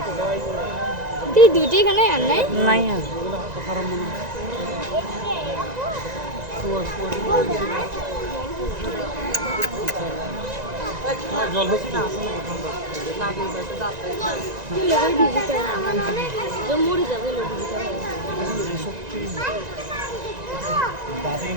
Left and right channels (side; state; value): left; late; 1.9 ms